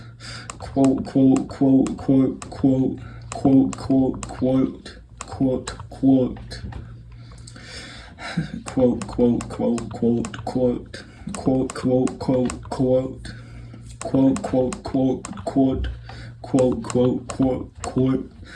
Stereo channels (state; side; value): identical; both; correlation 1.00